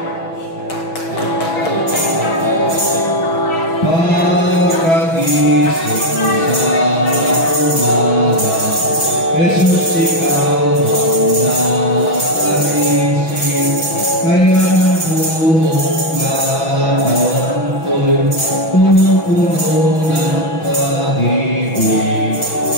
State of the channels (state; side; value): late; right; 6.1 ms